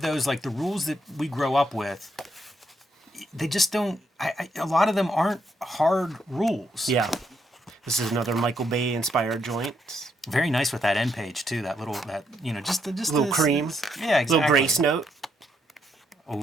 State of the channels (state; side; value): normal; both; correlation 0.76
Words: those, like, the rules that we grow up with, they just don't, a lot of them aren't hard rules. Yeah. This is another Michael Bay inspired joint. Very nice with that end page, too, just Little cream. Yeah, exactly. Little grace note.